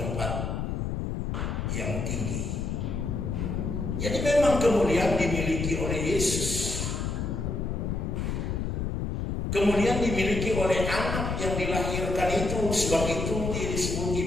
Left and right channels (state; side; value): noise; left; rumble, 2 dB below the sound